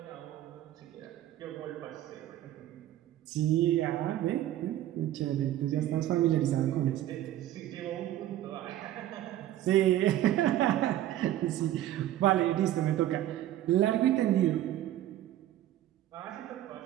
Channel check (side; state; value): left; quieter; 13.2 dB